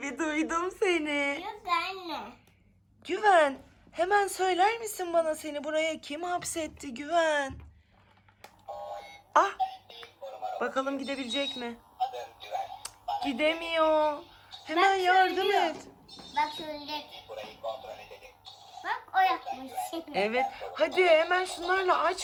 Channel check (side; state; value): both; identical; correlation 1.00